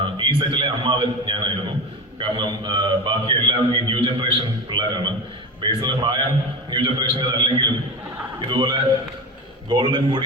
ഈ സെറ്റിലെ അമ്മാവൻ ഞാനായിരുന്നു. കാരണം ബാക്കി എല്ലാം ഈ ന്യൂ ജനറേഷൻ ജനറേഷൻ പിള്ളേരാണ്. ബേസിലെ പ്രായം ന്യൂ ജനറേഷൻ്റെ അല്ലെങ്കിലും ഇതുപോലെ ഗോൾഡൻ കൂടി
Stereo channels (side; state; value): both; normal; correlation 0.26